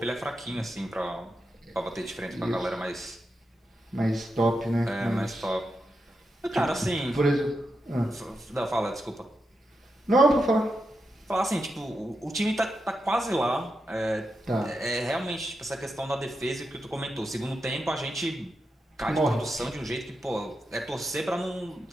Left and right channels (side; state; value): both; normal; correlation 0.87